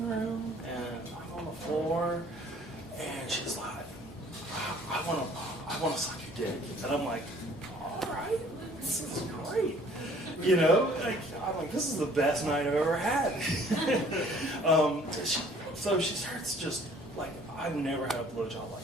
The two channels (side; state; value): both; normal; correlation 0.56